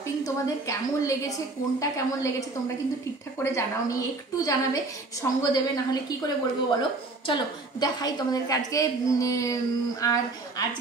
তোমাদের কেমন লেগেছে, কোনটা কেমন লেগেছে তোমরা কিন্তু ঠিকঠাক করে জানাওনি, একটু জানাবে, সঙ্গ দেবে, নাহলে কি করে বলবো বলো। চলো দেখাই তোমাদেরকে আজকে। আর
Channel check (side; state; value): left; quieter; 3.3 dB